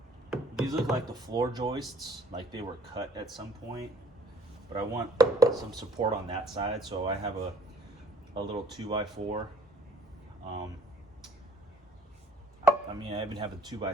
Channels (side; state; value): both; normal; correlation 0.56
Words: These look like the floor joists, like they were cut at some point, but I want some support on that side, so I have a little 2x4. I mean, I even have a